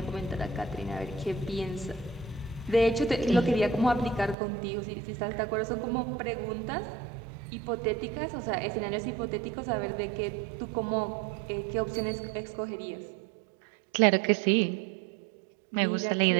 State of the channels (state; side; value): drops out; left; at 4.4 s